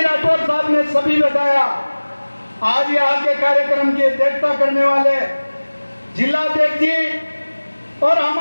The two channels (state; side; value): inverted; both; correlation -1.00